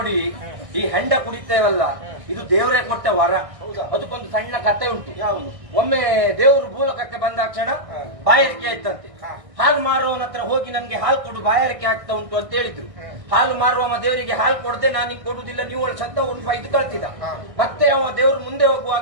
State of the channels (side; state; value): left; late; 1.6 ms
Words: ಈ ಹೆಂಡ ಕುಡಿತೇವಲ್ಲ, ಇದು ದೇವರೇ ಕೊಟ್ಟ ವರ. ಅದಕ್ಕೊಂದು ಸಣ್ಣ ಕತೆ ಉಂಟು. ಯಾವುದು? ಒಮ್ಮೆ ದೇವರು ಭೂಲೋಕಕ್ಕೆ ಬಂದಾಕ್ಷಣ ಬಾಯಾರಿಕೆ ಆಯ್ತಂತೆ. ಹಾಲು ಮಾರುವವನ ಹತ್ರ ಹೋಗಿ ನನ್ಗೆ ಹಾಲು ಕೊಡು, ಬಾಯಾರಿಕೆ ಆಗ್ತಾ ಉಂಟು ಅಂತ ಹೇಳಿದ್ರು. ಹಾಲು ಮಾರುವವ ದೇವರಿಗೆ ಹಾಲು ಕೊಡದೆ ನಾನು ಹಿಂಗ್ ಕೊಡುದಿಲ್ಲ, ನೀವು ಸತ್ತ ಒಂದು 5 ಕಳ್ತಿದ. ಮತ್ತೆ ಅವ ದೇವರು ಮುಂದೆ